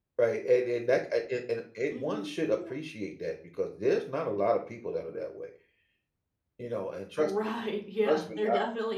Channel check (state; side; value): identical; both; correlation 1.00